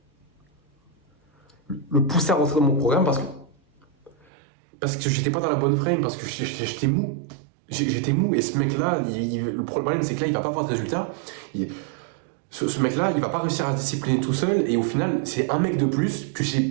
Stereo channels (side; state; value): left; drops out; at 4.2 s